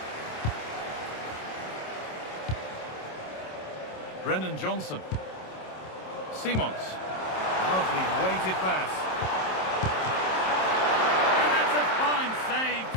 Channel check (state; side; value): late; right; 27 ms